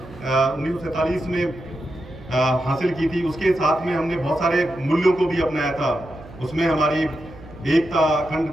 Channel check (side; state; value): right; noise; hum, 18 dB below the sound